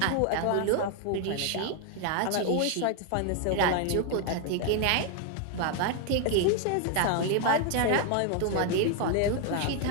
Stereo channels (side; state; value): both; different; correlation 0.01